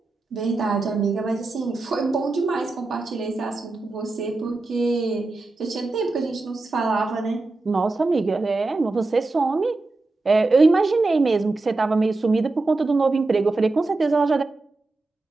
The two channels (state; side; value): quieter; left; 3.3 dB